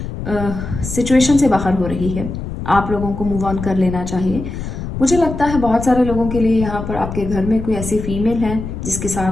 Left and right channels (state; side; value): noise; left; rumble, 7 dB below the sound